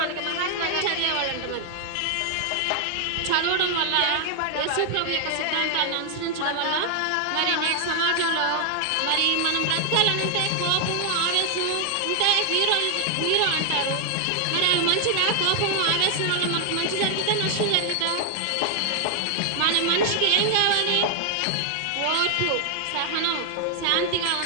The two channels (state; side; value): different; both; correlation 0.00